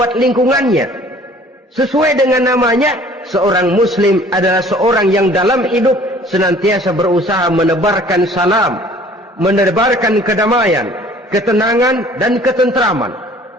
lingkungannya. Sesuai dengan namanya, seorang muslim adalah seorang yang dalam hidup senantiasa berusaha menebarkan salam, menebarkan kedamaian, ketenangan dan ketentraman.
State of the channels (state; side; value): normal; both; correlation 0.52